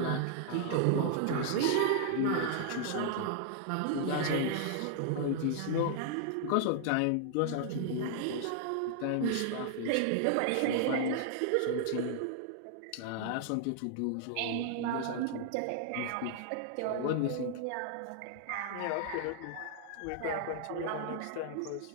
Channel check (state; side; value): different; both; correlation 0.00